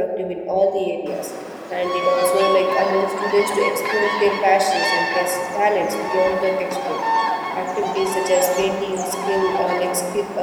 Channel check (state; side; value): identical; both; correlation 1.00